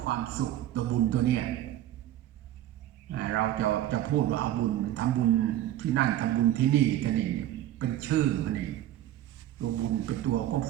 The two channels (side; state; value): left; quieter; 13.0 dB